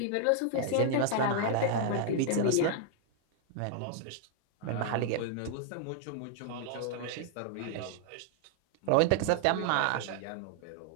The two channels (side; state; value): both; different; correlation 0.00